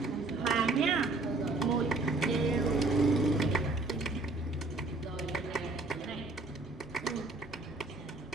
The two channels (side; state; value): left; quieter; 3.2 dB